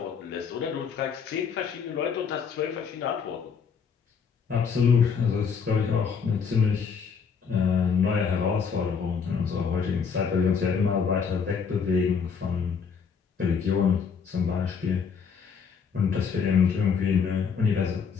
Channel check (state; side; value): quieter; right; 6.3 dB